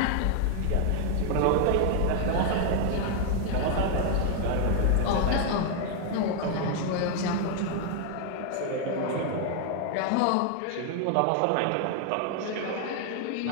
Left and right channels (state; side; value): different; both; correlation 0.00